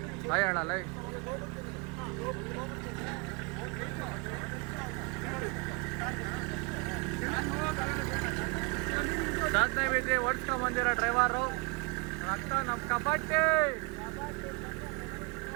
ಹಾಯ್ ಹೇಳಲ್ಲ. ಸಾಧನೆ ಬಿದ್ದು ಓಡಿಸ್ಕೊಂಡ್ ಬಂದಿರೋ ಡ್ರೈವರು ರಕ್ತ ನಮ್ಮ ಕಬಡ್ಡಿ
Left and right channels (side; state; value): left; quieter; 30.0 dB